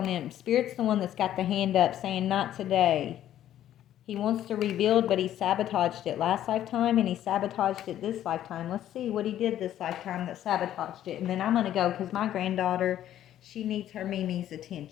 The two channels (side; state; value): right; quieter; 11.8 dB